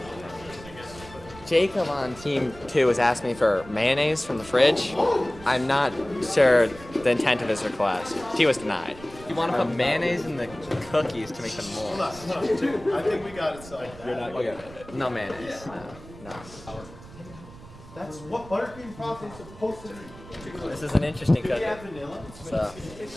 Jacob on Team 2 has asked me for mayonnaise from the fridge. I'm not sure the intent of his request. He was denied. You want to put mayonnaise in the cookies to make them moist. Dude, I think we got it solved. You're not okay. No mayonnaise. No. That's what buttercream frosting is supposed to be. This is an interesting cookie. So.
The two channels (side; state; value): right; noise; rumble, 18 dB below the sound